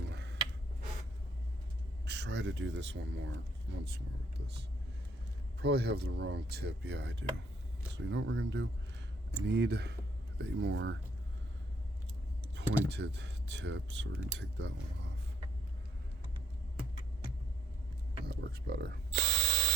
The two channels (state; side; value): normal; both; correlation 0.68